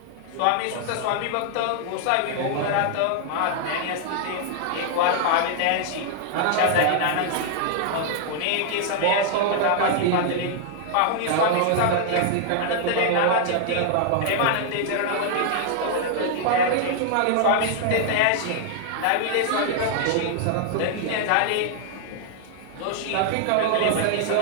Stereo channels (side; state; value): both; different; correlation 0.00